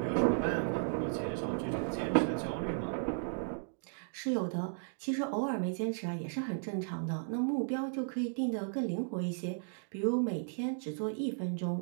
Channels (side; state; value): left; silent; digital silence